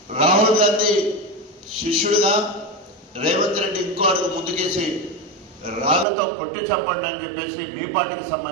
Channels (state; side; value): drops out; left; at 6.1 s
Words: రాహుల్ గాంధీ శిష్యుడిగా రేవంత్ రెడ్డి ఇంకో అడుగు ముందుకేసి రాళ్లతో కొట్టి చంపండి అని చెప్పేసి మీ పార్టీకి